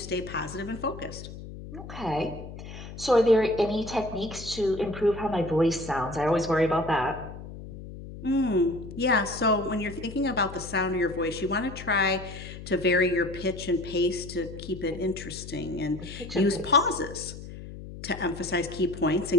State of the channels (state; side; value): noise; left; hum, 12 dB below the sound